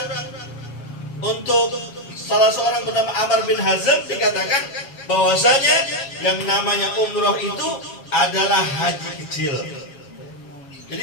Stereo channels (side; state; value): right; late; 7.3 ms